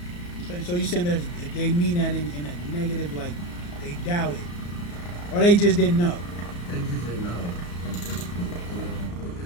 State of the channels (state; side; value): late; right; 34 ms